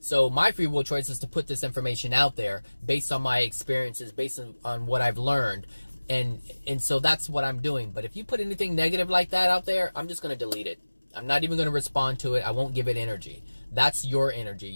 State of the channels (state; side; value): inverted; both; correlation -1.00